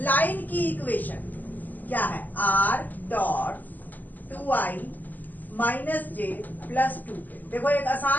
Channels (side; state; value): right; late; 0.084 ms